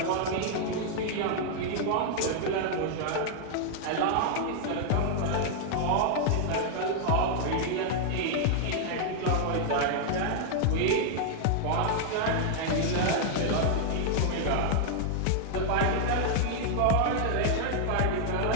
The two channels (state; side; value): different; both; correlation -0.01